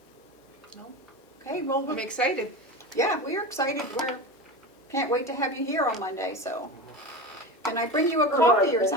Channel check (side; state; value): both; normal; correlation 0.26